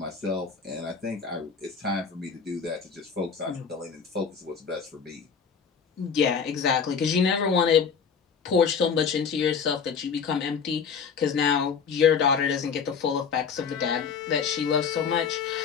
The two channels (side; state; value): right; quieter; 6.3 dB